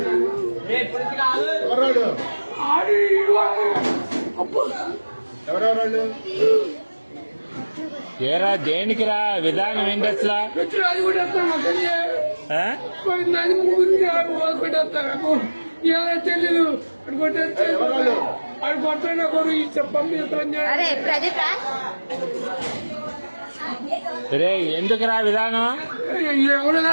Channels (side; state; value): both; inverted; correlation -1.00